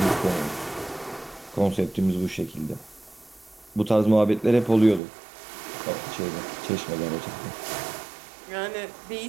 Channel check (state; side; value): drops out; left; at 5.0 s